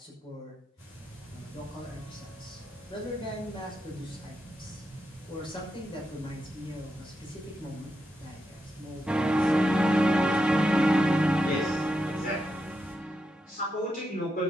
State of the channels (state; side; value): normal; both; correlation 0.85